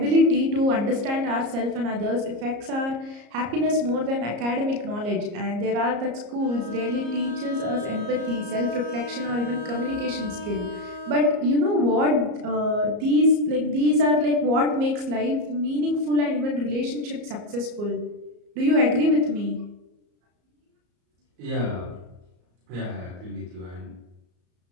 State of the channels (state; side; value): late; left; 34 ms